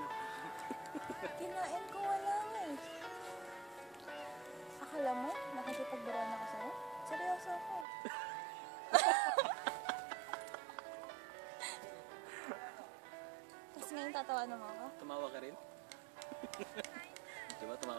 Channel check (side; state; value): left; drops out; at 7.9 s